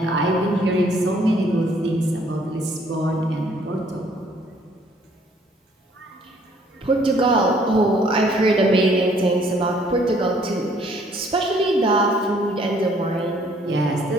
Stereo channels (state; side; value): normal; both; correlation 0.62